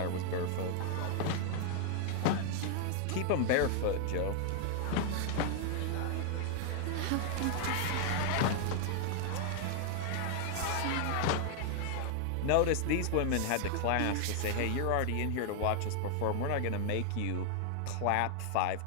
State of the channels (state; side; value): different; both; correlation 0.00